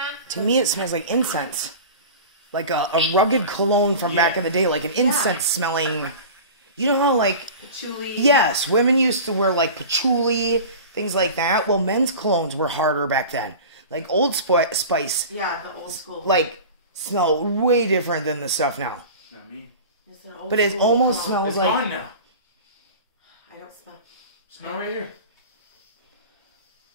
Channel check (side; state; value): both; inverted; correlation -0.35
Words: to me it smells like incense. Like a rugged cologne from back in the day, like an incense smelling. You know how like... Patchouli. Yes, women used to wear like patchouli, things like that. Well, men's colognes were harder back then. Like Old Spice. Yeah, the old school. Like, smell way different than the stuff now. Not me. It's an old But it school almost cologne. smells It's like... gone now. I don't smell. Smell right here.